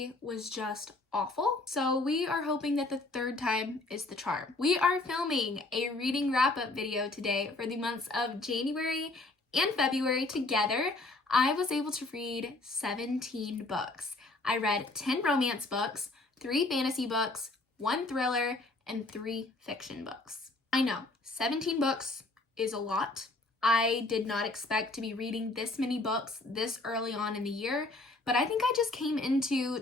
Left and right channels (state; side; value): quieter; right; 3.0 dB